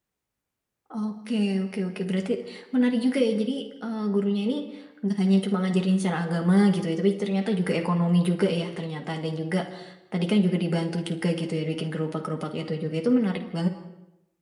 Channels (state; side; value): identical; both; correlation 1.00